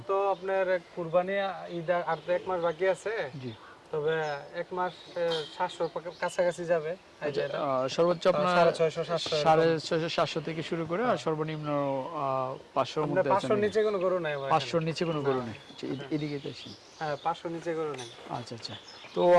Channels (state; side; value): identical; both; correlation 1.00